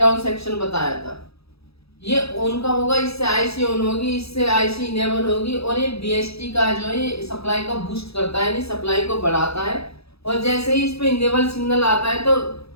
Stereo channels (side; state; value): right; late; 0.77 ms